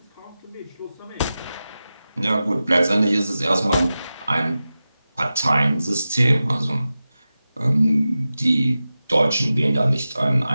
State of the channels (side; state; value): both; inverted; correlation -0.94